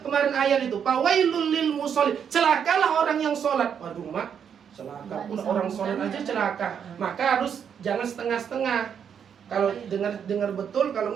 kemarin ayat itu, fawailul lil musallin, celakalah orang yang sholat. Waduh mak, celaka pula orang sholat aja celaka. Maka harus jangan setengah-setengah. Kalau dengar betul, kalau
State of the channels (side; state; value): left; quieter; 7.8 dB